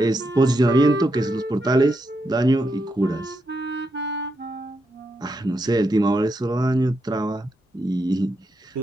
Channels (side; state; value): both; normal; correlation 0.83